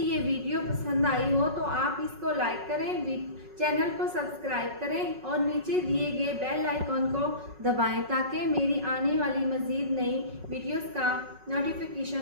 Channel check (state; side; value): late; left; 5.4 ms